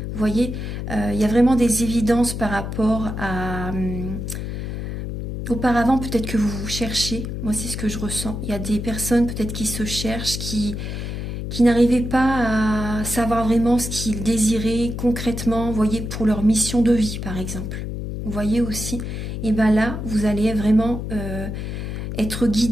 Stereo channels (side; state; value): left; noise; hum, 5 dB below the sound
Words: Vous voyez, il y a vraiment des évidences par rapport à... auparavant, peut-être que vous vous cherchez, moi c'est ce que je ressens. Il y a des personnes peut-être qui se cherchent, qui n'arrivaient pas à savoir vraiment ce qu'ils désiraient concrètement, vous voyez, pour leur mission de vie par exemple. Vous voyez aussi, et bien là, vous allez vraiment être